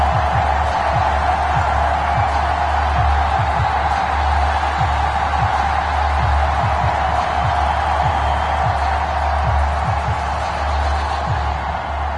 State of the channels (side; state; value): both; identical; correlation 1.00